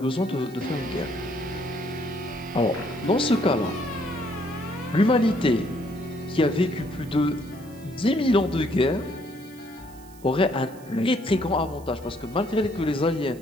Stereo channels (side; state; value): right; noise; hiss, 24 dB below the sound